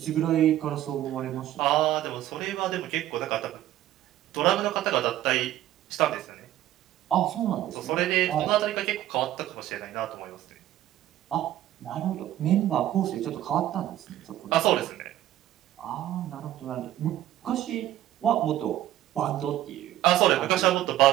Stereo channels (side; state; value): left; quieter; 13.4 dB